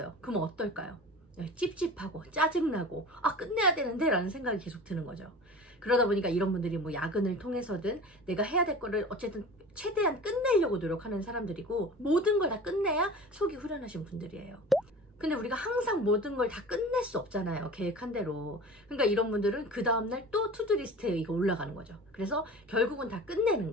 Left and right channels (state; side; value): normal; both; correlation 0.38